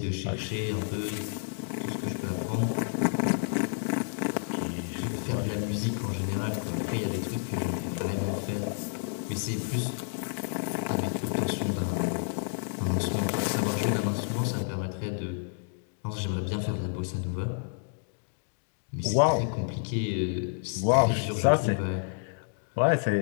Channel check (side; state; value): right; silent; digital silence